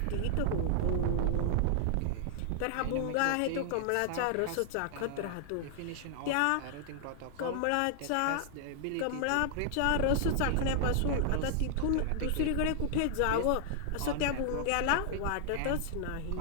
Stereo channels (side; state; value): both; different; correlation -0.01